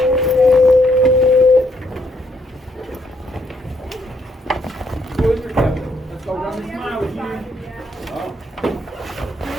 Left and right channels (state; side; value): normal; both; correlation 0.72